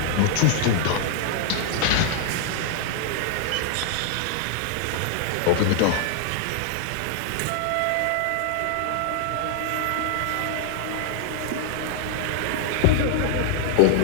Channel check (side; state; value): both; different; correlation 0.00